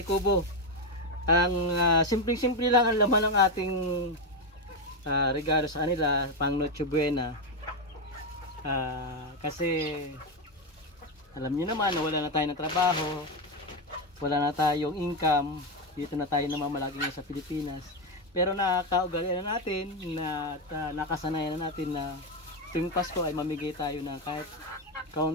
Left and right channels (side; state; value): both; normal; correlation 0.08